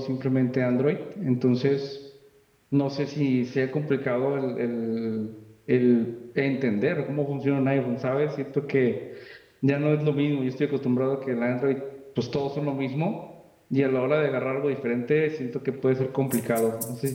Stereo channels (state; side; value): identical; both; correlation 1.00